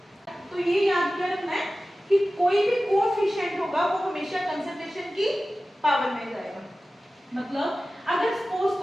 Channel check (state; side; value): normal; both; correlation 0.95